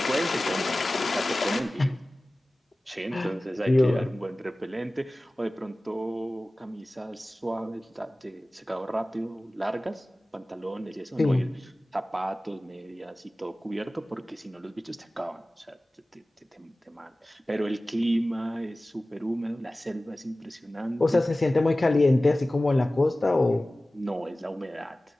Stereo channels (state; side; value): normal; both; correlation 0.97